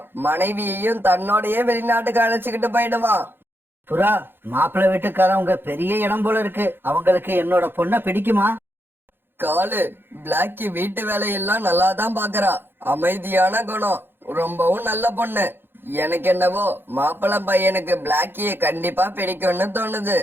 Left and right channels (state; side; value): late; left; 0.10 ms